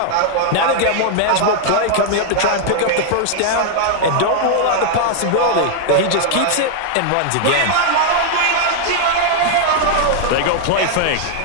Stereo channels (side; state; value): both; different; correlation -0.01